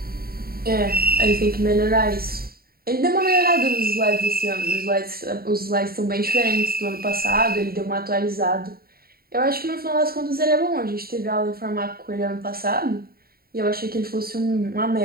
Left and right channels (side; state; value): left; late; 0.44 ms